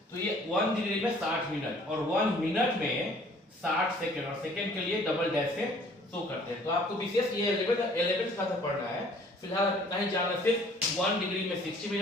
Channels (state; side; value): normal; both; correlation 0.56